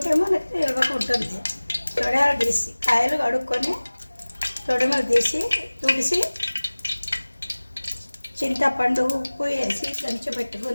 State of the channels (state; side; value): inverted; both; correlation -1.00